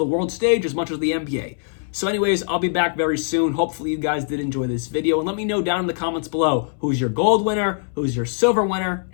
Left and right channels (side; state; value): right; silent; 64 dB below the other